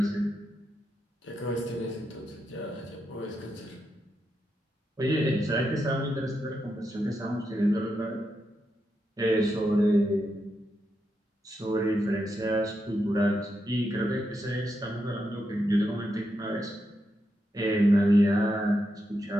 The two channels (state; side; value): normal; both; correlation 0.84